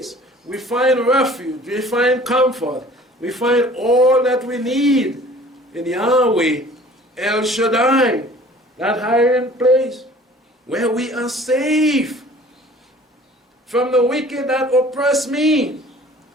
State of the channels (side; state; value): both; normal; correlation 0.49